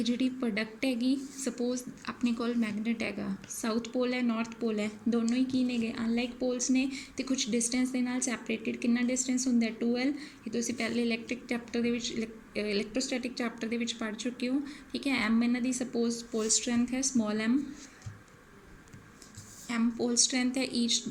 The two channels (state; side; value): identical; both; correlation 1.00